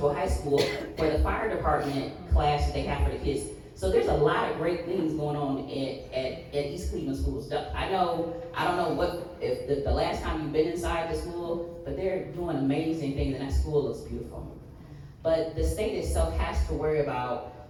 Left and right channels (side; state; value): both; identical; correlation 1.00